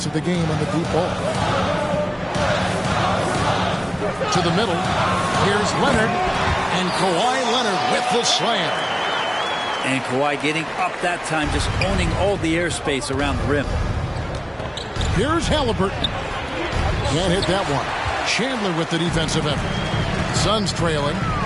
of the game on the deep ball. To the middle. Here's Leonard. And Kawhi Leonard with the slam. And Kawhi getting up that time, just owning all the airspace around the rim. Here's Halliburton. Can't hit that one. Chandler with the defensive effort. Suns trailing.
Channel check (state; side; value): identical; both; correlation 1.00